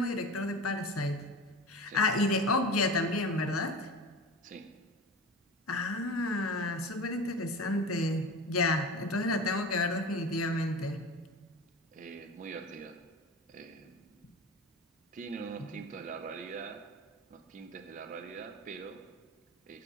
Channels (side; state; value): both; normal; correlation 0.32